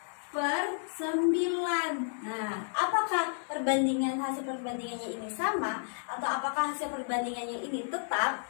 Apakah hasil perbandingannya ini sama, atau apakah hasil perbandingannya ini tetap?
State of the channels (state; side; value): silent; right; digital silence